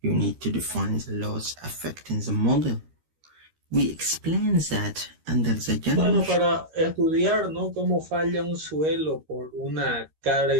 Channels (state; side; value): late; left; 13 ms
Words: you need to define the laws affecting the model. We explain that under the general... Bueno, para estudiar, ¿no?, cómo falla un suelo por una